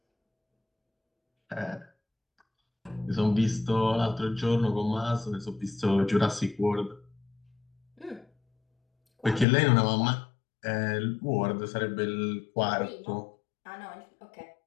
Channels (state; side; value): drops out; right; at 9.5 s